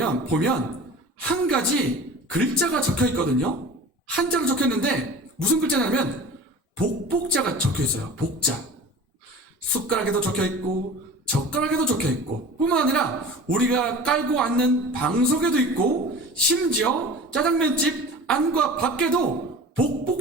한 가지 글자가 적혀 있거든요. 한자로 적혀 있는데 무슨 글자냐면 복복자가 적혀 있어요. 복자. 숟가락에도 적혀 있고 젓가락에도 적혀 있고 뿐만 아니라 우리가 깔고 앉는 방석에도 있고 심지어 짜장면집 안과 밖에도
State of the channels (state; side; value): normal; both; correlation 0.39